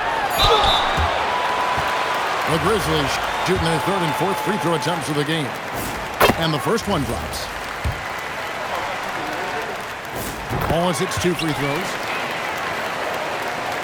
The Grizzlies shooting their 3rd and 4th free throw attempts of the game. And the first one drops. Wallace hits 2 free throws.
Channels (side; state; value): both; identical; correlation 1.00